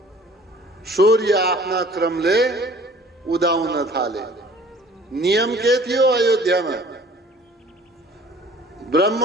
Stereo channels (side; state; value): both; normal; correlation 0.51